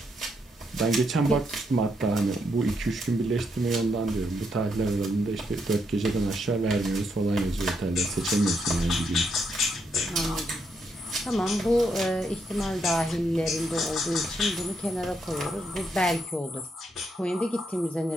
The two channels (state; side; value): normal; both; correlation 0.78